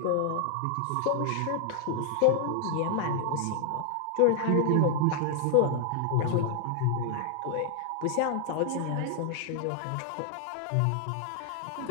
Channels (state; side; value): different; both; correlation 0.00